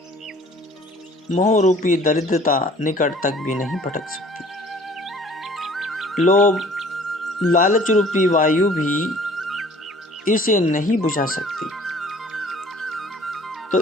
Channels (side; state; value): both; normal; correlation 0.52